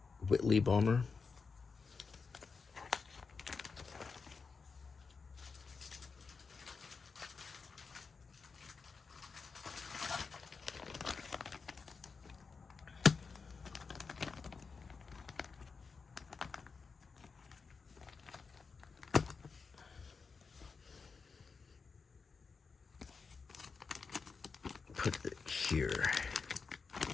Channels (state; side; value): quieter; right; 5.0 dB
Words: Whitley bomber. Put it here.